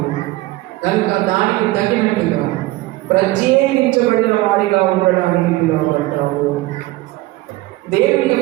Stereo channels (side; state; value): left; quieter; 18.6 dB